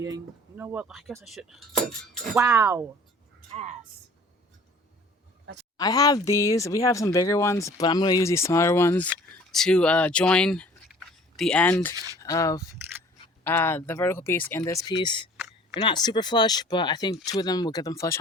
You know what? I guess I should. Wow. Ass. I have these. We have some bigger ones, but I'm going to use these smaller ones to join the end of the vertical piece and this piece. They're not super flush, but I think two of them will get them flush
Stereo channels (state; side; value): normal; both; correlation 0.50